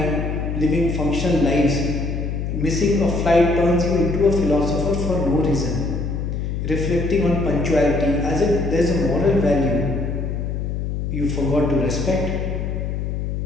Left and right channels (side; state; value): left; noise; hum, 2 dB below the sound